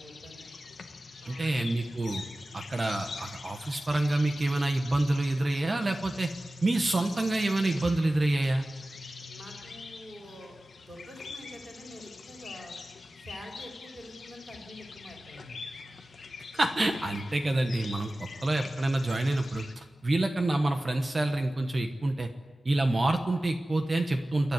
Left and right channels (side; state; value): both; normal; correlation 0.96